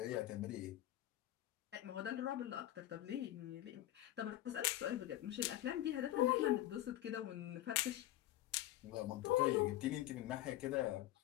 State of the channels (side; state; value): right; quieter; 14.4 dB